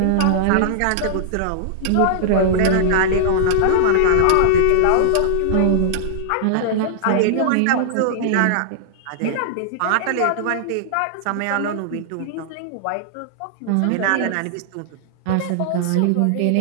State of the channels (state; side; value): different; both; correlation -0.01